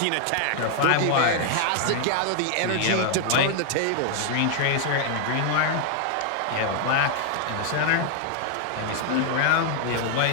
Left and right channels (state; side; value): different; both; correlation 0.00